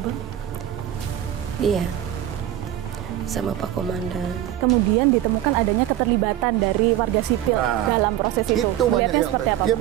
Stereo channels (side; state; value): left; quieter; 12.5 dB